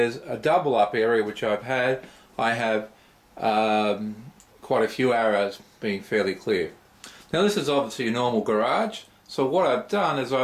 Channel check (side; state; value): both; identical; correlation 1.00